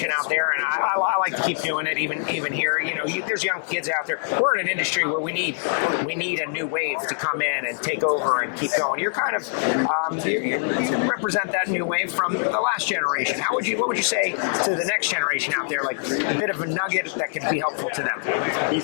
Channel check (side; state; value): right; silent; 63 dB below the other